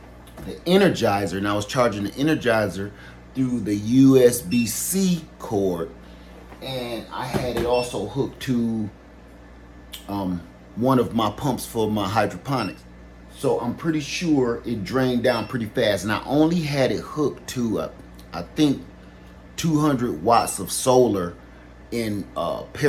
the Energizer, and I was charging the Energizer through the USB-C cord, and I had it also hooked to one of my pumps for my hydroponics. So I'm pretty sure it drained down pretty fast, and I only had it hooked to I think 200 watts of solar in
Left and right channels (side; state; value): both; identical; correlation 1.00